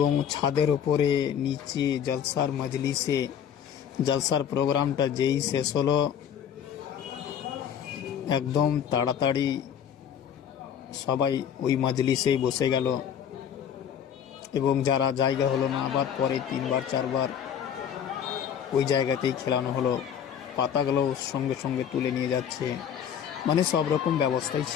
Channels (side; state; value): right; quieter; 8.7 dB